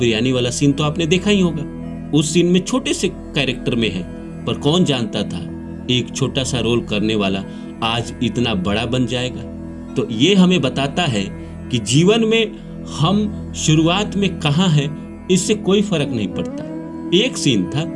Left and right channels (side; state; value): both; identical; correlation 1.00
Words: वाला सीन तो आपने देखा ही होगा। उस सीन में छोटे से कैरेक्टर में है, पर कौन जानता था एक छोटा सा रोल करने वाला आज इतना बड़ा बन जाएगा। तो ये हमें बताता है कि जीवन में हम शुरुआत में कहाँ हैं इससे कोई फर्क नहीं पड़ता। एक सीन था